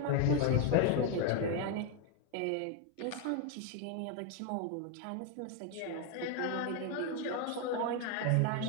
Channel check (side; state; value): both; different; correlation 0.01